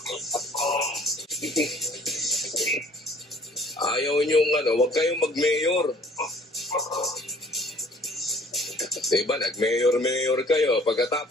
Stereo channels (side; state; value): both; normal; correlation 0.56